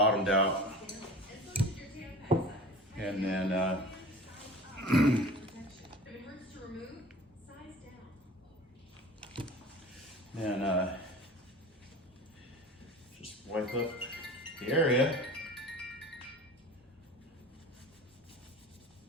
out. And then, just wipe up the area.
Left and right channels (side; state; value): both; normal; correlation 0.38